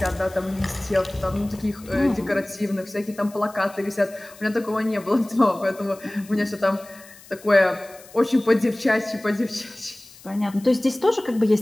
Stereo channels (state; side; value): noise; left; hiss, 22 dB below the sound